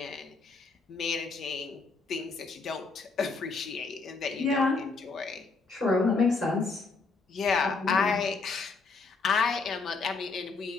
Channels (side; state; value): right; quieter; 4.2 dB